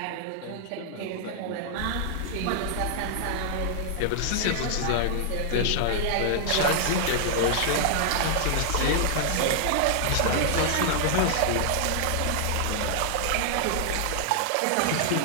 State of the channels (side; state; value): both; different; correlation -0.01